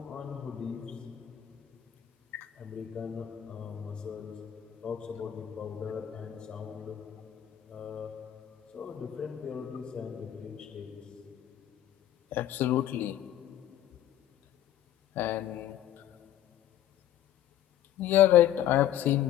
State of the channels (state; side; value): quieter; right; 11.7 dB